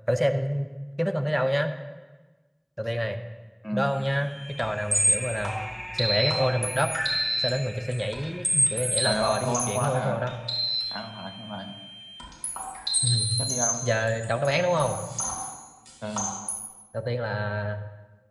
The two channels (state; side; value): identical; both; correlation 1.00